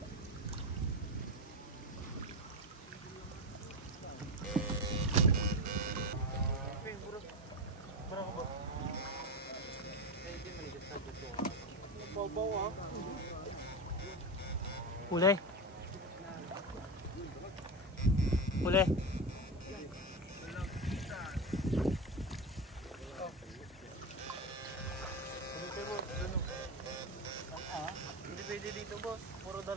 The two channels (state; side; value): normal; both; correlation 0.17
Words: Uli. Hindi pwede dito, boss. Puro